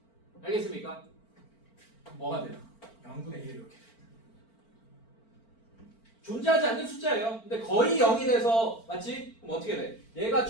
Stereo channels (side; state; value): right; late; 4.4 ms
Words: 알겠습니까? 뭐가 돼요? 0분의 1 이렇게 존재하지 않는 숫자예요. 근데 거의 0이 돼서 맞지? 그럼 어떻게 돼? 얘가